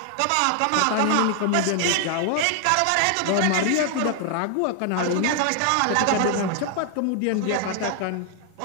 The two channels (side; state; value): both; different; correlation 0.00